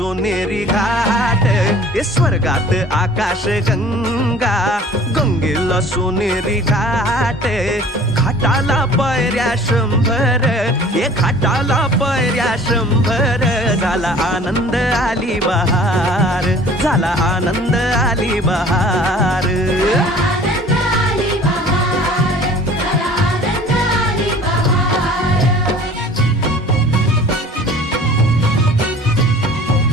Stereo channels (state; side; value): normal; both; correlation 0.48